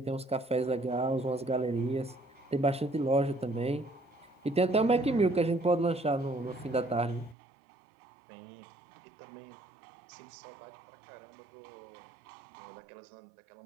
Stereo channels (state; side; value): drops out; left; at 7.4 s